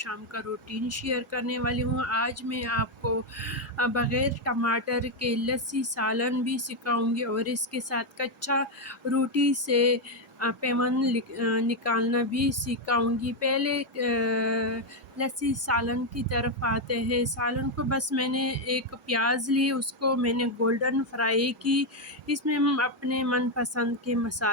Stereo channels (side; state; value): both; normal; correlation 0.04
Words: کا روٹین شیئر کرنے والی ہوں۔ آج میں آپ کو بغیر ٹماٹر کے لسی سالن بھی سکھاؤں گی اور اس کے ساتھ کچا روٹی سے پیمن نکالنا بھی سکھاؤں گی۔ پہلے لسی سالن کی طرف آتے ہیں۔ سالن کو بس میں نے ایک پیاز لی، اس کو میں نے گولڈن فرائی کی۔ اس میں ہم اپنے من پسند کے